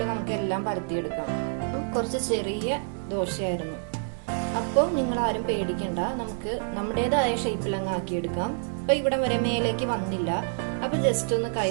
നമുക്ക് എല്ലാം പരത്തിയെടുക്കാം. കുറച്ച് ചെറിയ ദോശയായിരുന്നു. അപ്പോൾ നിങ്ങൾ ആരും പേടിക്കണ്ട, നമുക്ക് നമ്മുടേതായ ഷേപ്പിൽ അങ്ങ് ആക്കിയെടുക്കാം. അപ്പൊ ഇവിടെ വരെ മേലേക്ക് വന്നില്ല. അപ്പൊ ജസ്റ്റ് ഒന്ന്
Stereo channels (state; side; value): silent; left; digital silence